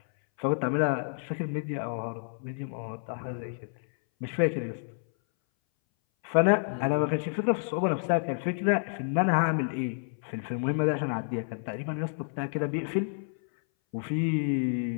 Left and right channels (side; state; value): right; silent; 58 dB below the other